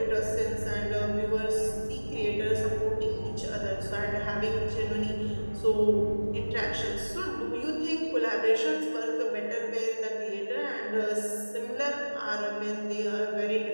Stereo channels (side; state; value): both; inverted; correlation -1.00